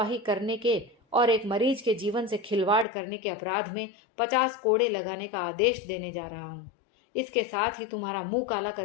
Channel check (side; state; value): right; drops out; at 2.9 s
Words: करने के और एक मरीज के जीवन से खिलवाड़ करने के अपराध में 50 कोड़े लगाने का आदेश देने जा रहा हूं। इसके साथ ही तुम्हारा मुंह काला